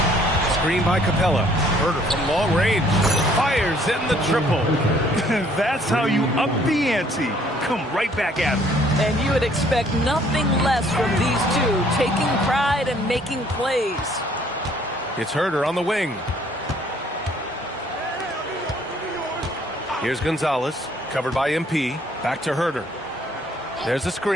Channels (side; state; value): both; normal; correlation 0.61